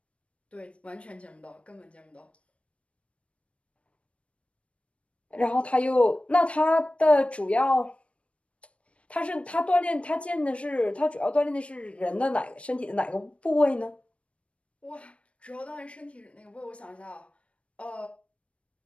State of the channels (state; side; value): late; right; 0.062 ms